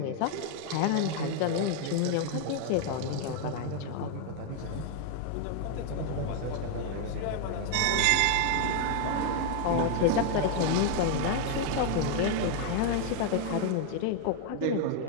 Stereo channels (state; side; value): different; both; correlation 0.00